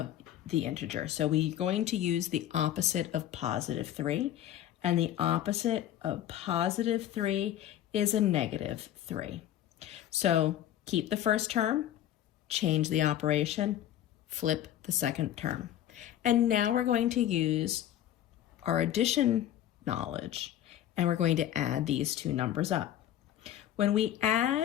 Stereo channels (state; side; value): quieter; right; 11.8 dB